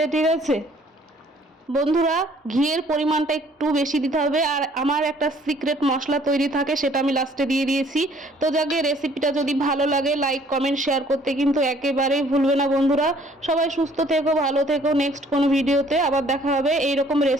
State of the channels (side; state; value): both; normal; correlation 0.59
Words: ঠিক আছে বন্ধুরা। ঘিয়ের পরিমাণটা একটু বেশি দিতে হবে, আর আমার একটা সিক্রেট মশলা তৈরি থাকে সেটা আমি লাস্টে দিয়ে দিয়েছি। তো যাকে রেসিপিটা যদি ভালো লাগে লাইক কমেন্ট শেয়ার করতে কিন্তু একেবারেই ভুলবে না বন্ধুরা। সবাই সুস্থ থেকো, ভালো থেকো। নেক্সট কোনো ভিডিওতে আবার দেখা হবে এইরকম